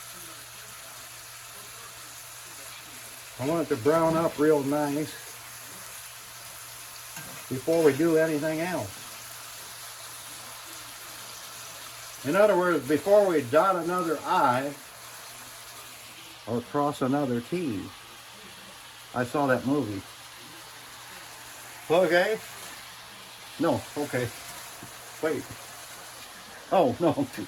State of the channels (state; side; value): identical; both; correlation 1.00